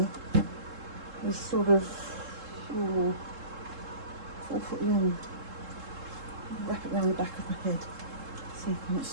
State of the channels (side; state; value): left; late; 3.7 ms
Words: is sort of 4 foot long. Wrap it around the back of my head so you can't